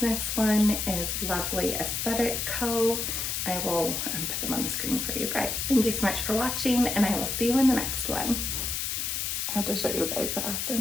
one is Lovely Aesthetic Co. I will put them on the screen for you guys. Thank you so much for watching, and I will see you in the next one. I have to show you guys the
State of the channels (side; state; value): left; noise; hiss, 1 dB below the sound